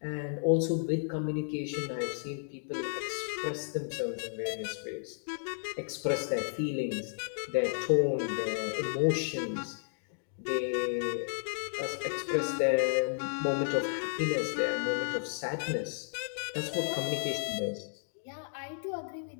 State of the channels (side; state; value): right; silent; digital silence